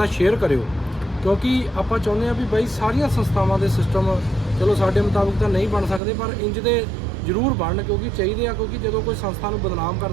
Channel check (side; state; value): left; drops out; at 6.0 s